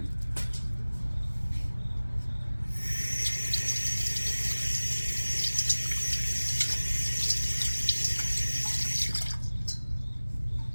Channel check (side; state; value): both; inverted; correlation -1.00